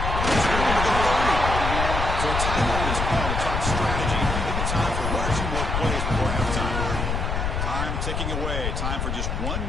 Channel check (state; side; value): noise; left; rumble, 1 dB below the sound